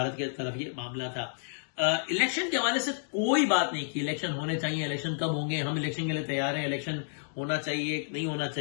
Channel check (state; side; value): silent; right; digital silence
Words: کی طرف یہ معاملہ تھا. الیکشن کے حوالے سے کوئی بات نہیں کی, الیکشن ہونے چاہیے, الیکشن کب ہوں گے, ہم الیکشن کے لیے تیار ہیں, الیکشن ہونا چاہیے نہیں ہونا